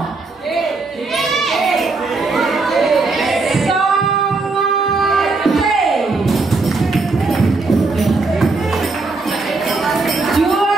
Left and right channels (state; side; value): quieter; left; 3.7 dB